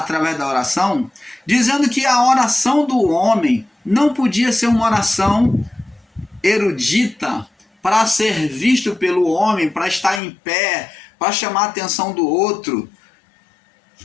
da oração, dizendo que a oração do homem não podia ser uma oração erudita para ser visto pelo homem, para estar em pé, para chamar a atenção do outro.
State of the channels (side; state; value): right; drops out; at 10.2 s